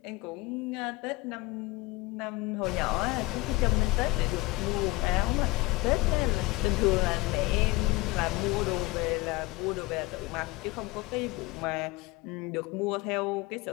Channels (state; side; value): quieter; right; 21.2 dB